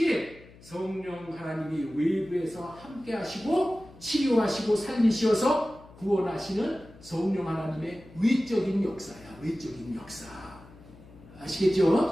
성령 하나님이 외부에서 함께 하시고 치료하시고 살리셔서 구원하시는 성령 하나님의 외적인 역사야. 외적인 역사.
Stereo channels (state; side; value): noise; left; hum, 22 dB below the sound